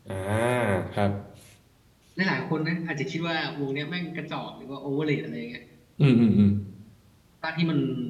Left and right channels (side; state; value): both; identical; correlation 1.00